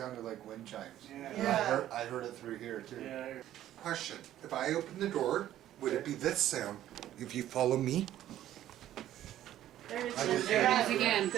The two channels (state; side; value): quieter; left; 12.6 dB